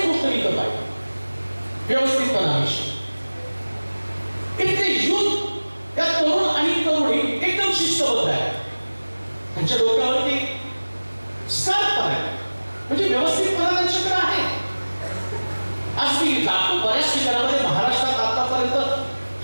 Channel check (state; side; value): inverted; both; correlation -1.00